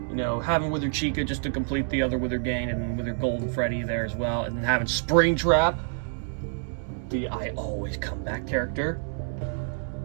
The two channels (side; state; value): left; silent; digital silence